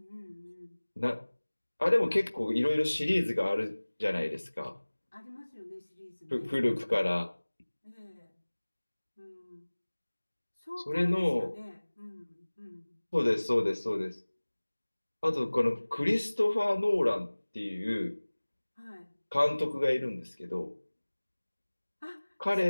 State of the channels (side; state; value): both; inverted; correlation -1.00